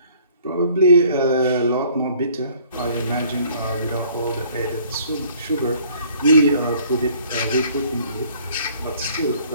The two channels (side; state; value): both; inverted; correlation -0.57